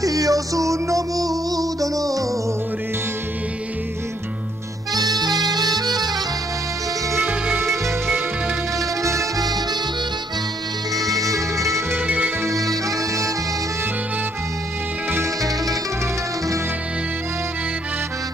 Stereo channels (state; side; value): normal; both; correlation 0.70